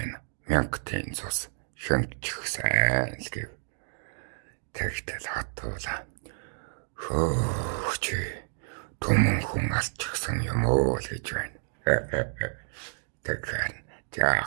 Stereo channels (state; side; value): silent; left; digital silence